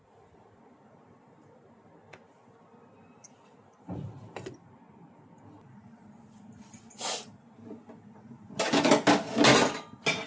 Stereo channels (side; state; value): both; identical; correlation 1.00